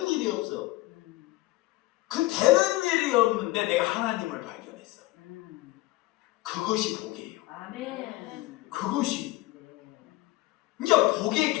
일이 없어. 그 되는 일이 없는데 내가 하나님을 발견했어. 그것이 복이에요. 아멘. 그것이. 이제 복의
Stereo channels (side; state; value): right; quieter; 19.0 dB